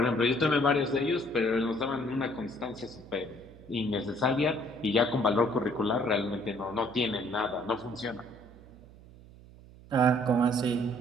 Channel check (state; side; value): noise; right; hum, 21 dB below the sound